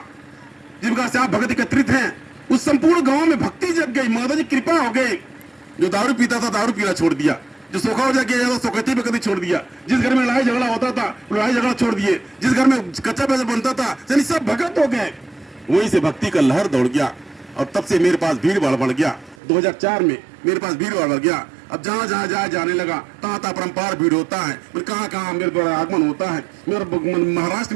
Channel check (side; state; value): left; drops out; at 19.4 s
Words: जिस प्रकार से आप भगत एकत्रित हैं, उस संपूर्ण गांव में भक्ति जग गई, माता जी कृपा हो गई। जो दारू पीता था दारू पीना छोड़ दिया, जो सोखा हो जाए सोखती पे कभी छोड़ दिया, जिस घर में लड़ाई झगड़ा होता था लड़ाई झगड़ा छोड़ दिए, जिस घर में कच्चा पैसा बनता था यानी सब भगत हो गए। वहीं से भक्ति का लहर दौड़ गया, और तब से मेरे पास भीड़ भाड़ बढ़ गया। 2004 में मेरे पास भीड़ भाड़ बढ़ गया। अब जहां जहां जाने लगा, तहां तहां परंपार भीड़ होता है। कहां कहां मेरे द्वारा आगमन होता है। मेरा महाराष्ट्र